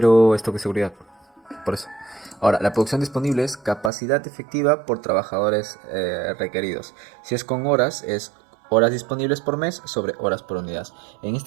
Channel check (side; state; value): left; drops out; at 3.9 s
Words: esto que seguridad. Por eso. Ahora, la producción disponible es capacidad efectiva por trabajadores requeridos. Si es con horas, es horas disponibles por mes sobre horas por unidad. En